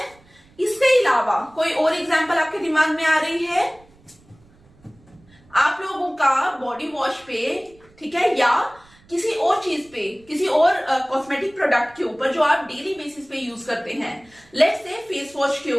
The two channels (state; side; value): noise; right; rumble, 29 dB below the sound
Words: इसके अलावा कोई और एग्जाम्पल आपके दिमाग में आ रही है? आप लोगों का बॉडी वॉश पे, ठीक है, या किसी और चीज पे, किसी और कॉस्मेटिक प्रोडक्ट के ऊपर जो आप डेली बेसिस पे यूज करते हैं, लेट्स से फेस वॉश के